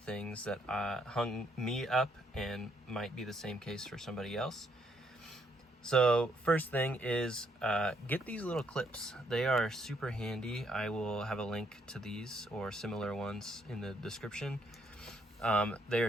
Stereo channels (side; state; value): both; normal; correlation 0.71